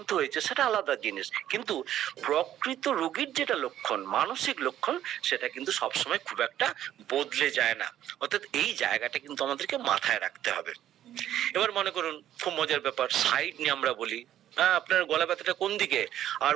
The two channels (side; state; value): left; quieter; 11.8 dB